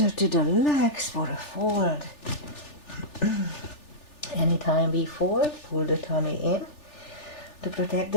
to the legs for a fold. Anytime we fold, pull the tummy in to protect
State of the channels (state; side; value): late; right; 3.4 ms